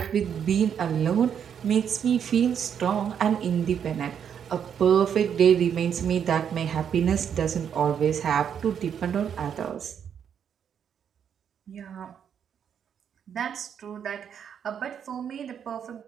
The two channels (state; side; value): quieter; left; 8.2 dB